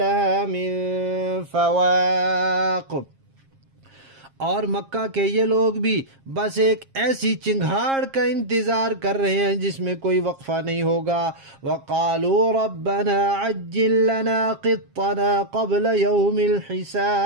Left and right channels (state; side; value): late; left; 7.5 ms